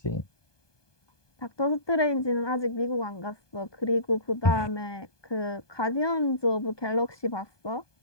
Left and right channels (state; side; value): late; right; 1.2 ms